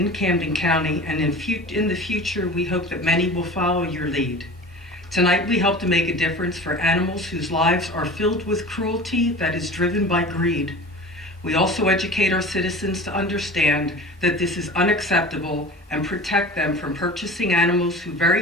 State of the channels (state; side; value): normal; both; correlation 0.37